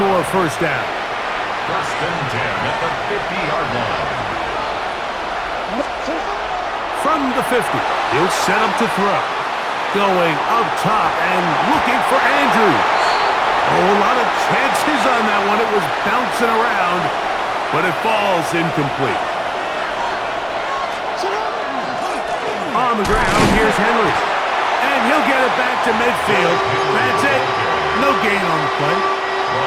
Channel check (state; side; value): identical; both; correlation 1.00